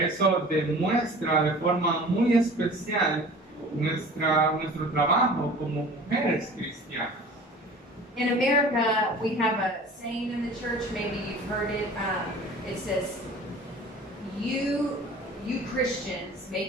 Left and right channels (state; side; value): normal; both; correlation 0.43